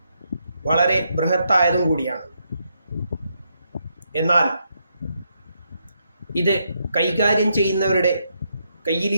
വളരെ ബൃഹത്തായതും കൂടിയാണ്. എന്നാൽ ഇത് കൈകാര്യം ചെയ്യുന്നവരുടെ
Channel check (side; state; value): both; inverted; correlation -0.78